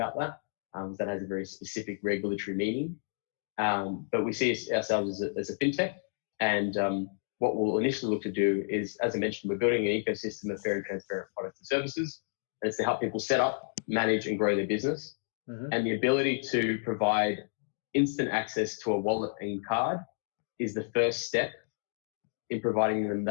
that. That has a very specific regulatory meaning. But we see ourselves as a fintech. And what we'll initially look to do is, as I mentioned, we're building an ecosystem of fair and transparent products and services. And it's to help people set up, manage, and grow their business. Mm-hmm. And the ability to provide instant access to a wallet and card is the first step in providing them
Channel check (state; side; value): silent; right; digital silence